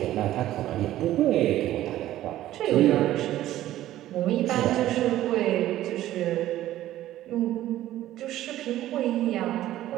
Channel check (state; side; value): quieter; left; 14.0 dB